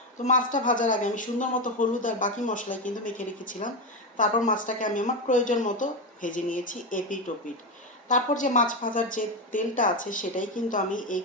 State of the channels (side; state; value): both; normal; correlation 0.12